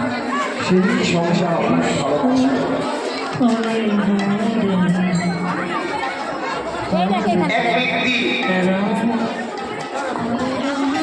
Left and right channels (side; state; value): both; identical; correlation 1.00